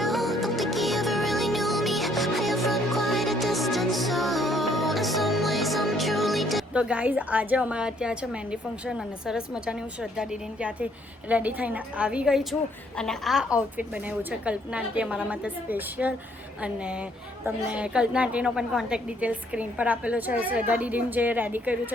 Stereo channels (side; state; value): both; normal; correlation 0.66